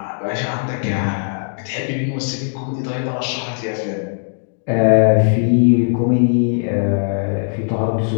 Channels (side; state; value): right; silent; digital silence